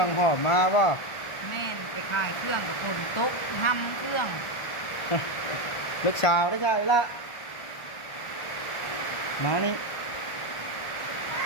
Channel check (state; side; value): late; right; 1.4 ms